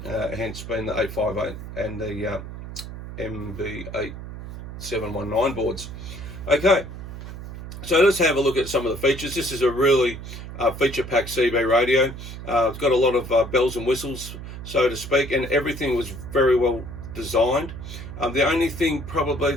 hence being the 858 and the MB8719 boards. Okay, so let's have a look at some of the features. This is a really feature-packed CB radio. It's got a lot of bells and whistles, so to speak, and everything was very well designed. The only thing probably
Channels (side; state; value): right; noise; hum, 10 dB below the sound